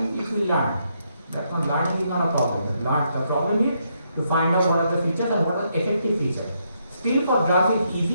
it will learn. That's not learning is not a problem. The problem is to find out what are the features and what are the effective features. Still for drugs it's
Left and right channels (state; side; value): inverted; both; correlation -0.77